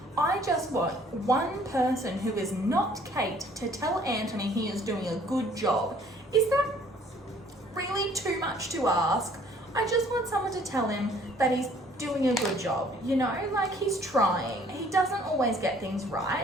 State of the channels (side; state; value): both; normal; correlation 0.58